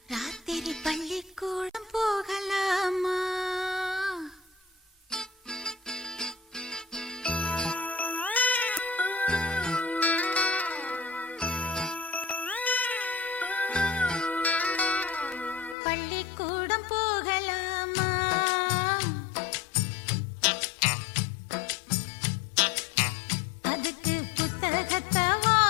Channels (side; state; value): right; drops out; at 15.8 s